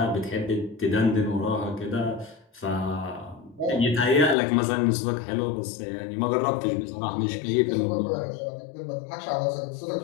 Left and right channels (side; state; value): right; drops out; at 4.4 s